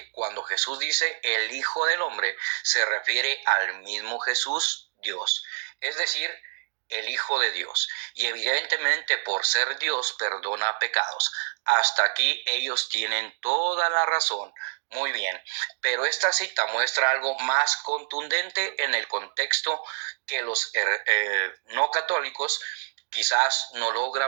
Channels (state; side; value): silent; left; digital silence